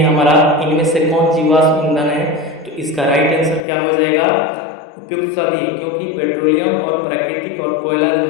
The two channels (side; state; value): right; drops out; at 3.7 s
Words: हमारा, इनमें से कौन जीवाश्म ईंधन है, तो इसका राइट आंसर क्या हो जाएगा, उपयुक्त सभी, क्योंकि पेट्रोलियम और प्राकृतिक और कोयला जो